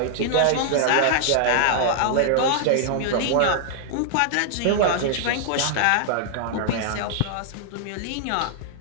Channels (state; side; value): different; both; correlation -0.01